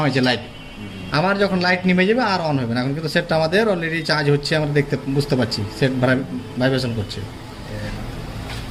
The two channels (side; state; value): both; identical; correlation 1.00